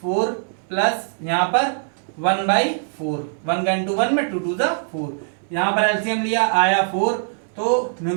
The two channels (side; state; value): left; silent; digital silence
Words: 4 प्लस यहाँ पर 1/4, 1 का इंटू 1 में 2 2 4, यहाँ पर एलसीएम लिया आया 4, तो